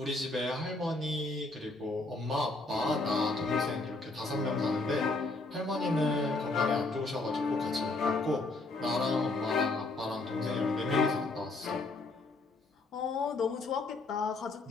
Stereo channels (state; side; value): quieter; right; 3.3 dB